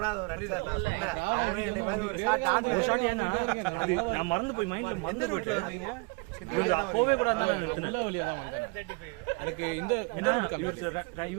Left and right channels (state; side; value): quieter; left; 29.9 dB